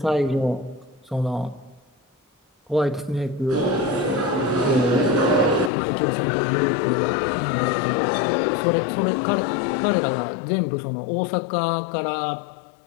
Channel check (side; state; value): right; drops out; at 5.7 s